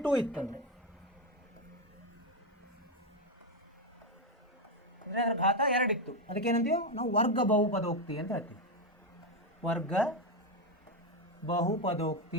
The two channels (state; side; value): normal; both; correlation 0.08